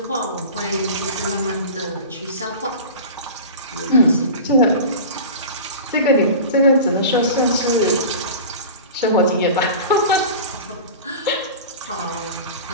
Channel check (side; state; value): both; inverted; correlation -0.34